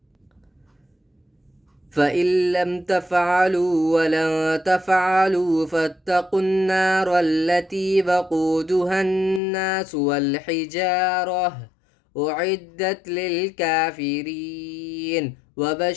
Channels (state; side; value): drops out; right; at 9.4 s